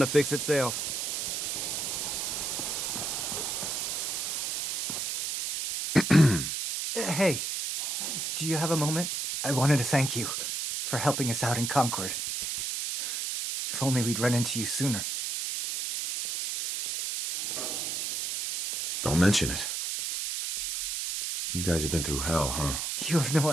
fix itself. Hey, do you have a moment? I wanted to thank you for helping us out in Concord. If only we'd run into you sooner. Don't mention it. You guys have been through hell, huh? You have no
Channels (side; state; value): right; noise; hiss, 2 dB below the sound